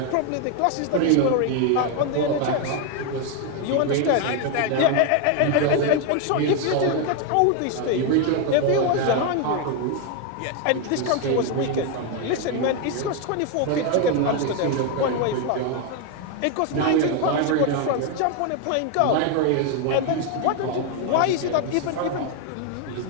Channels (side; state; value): both; different; correlation 0.01